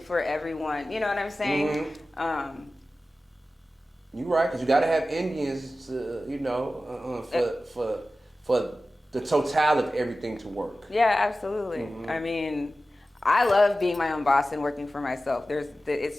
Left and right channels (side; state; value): both; normal; correlation 0.95